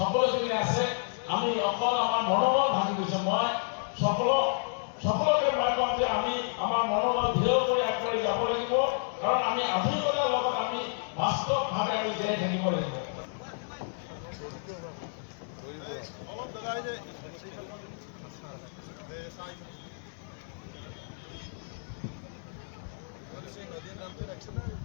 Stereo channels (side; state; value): right; silent; digital silence